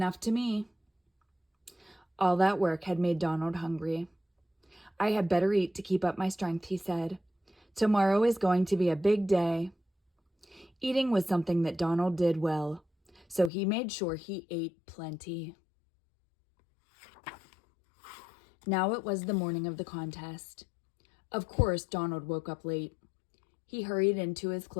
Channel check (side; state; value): right; drops out; at 13.5 s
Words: to me. All that work had made Donald hungry. I had better eat to keep up my strength, he said. Tomorrow is going to be a big day. Eating was something that Donald did well, so he made sure he ate plenty. Now it was the morning of the contest. Of course, Donald woke up late. He hurried into his